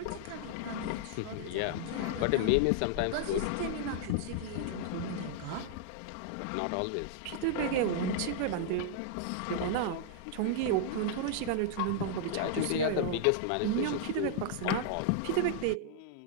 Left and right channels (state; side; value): different; both; correlation -0.01